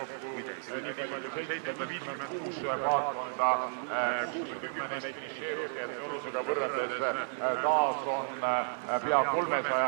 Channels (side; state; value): left; silent; digital silence